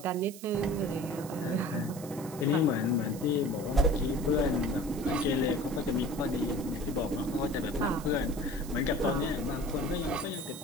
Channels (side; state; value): right; noise; hiss, 16 dB below the sound